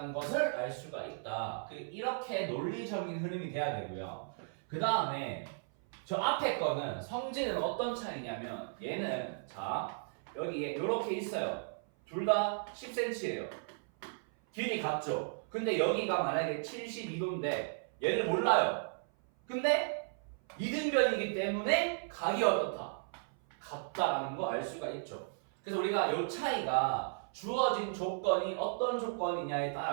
것을 알 수가 있다. 이렇게 논리적인 흐름이 돼야 되고요. 그 다음에 저 앞에 거는 성질은 어떤 차이냐면 얘는 자 여기에 이렇게 있어요. 둘 다 10cm예요. 길이 같죠? 근데 여기가 만약에 72도인데 얘를 몰라요. 근데 이등변이기 때문에 각이 어떻다? 같다라는 거 알 수가 있죠. 그래서 우리가 이 차이가 주어진 조건이 어떤 조건이냐에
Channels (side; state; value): left; silent; 54 dB below the other